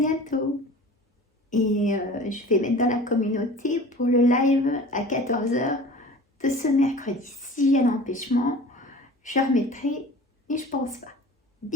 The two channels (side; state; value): both; normal; correlation 0.41